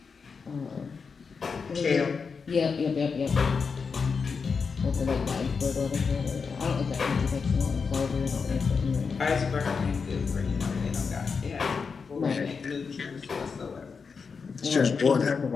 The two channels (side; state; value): right; quieter; 5.4 dB